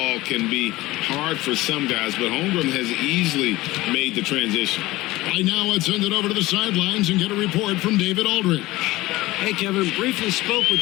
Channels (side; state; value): right; quieter; 18.7 dB